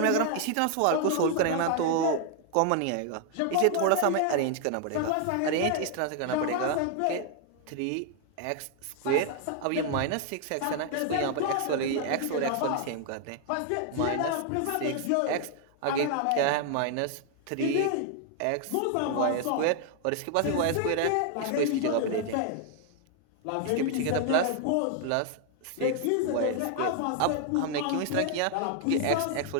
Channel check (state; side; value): different; both; correlation 0.00